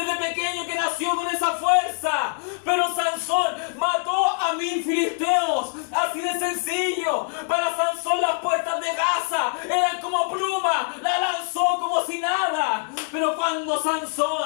pequeño que nació con esa fuerza, pero Sansón mató a 1000 filisteos, así de sencillo. Para Sansón las puertas de Gaza eran como pluma, la lanzó como si nada. Pero cuando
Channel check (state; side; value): silent; right; 63 dB below the other